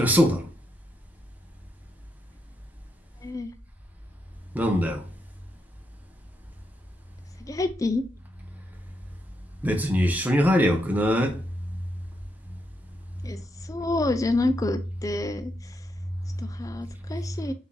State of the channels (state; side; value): normal; both; correlation 0.81